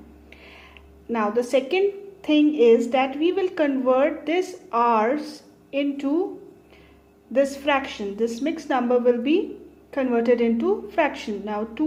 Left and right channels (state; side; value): identical; both; correlation 1.00